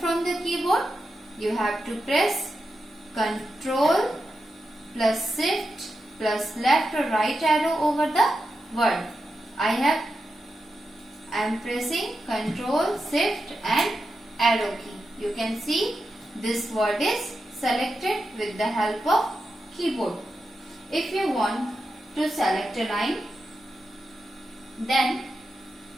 the keyboard, you have to press Ctrl plus Shift plus left or right arrow over the word. I am pressing Ctrl, Shift and arrow key. You can see this word is selected with the help of keyboard. If you want to select a line, then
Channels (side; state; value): both; normal; correlation 0.89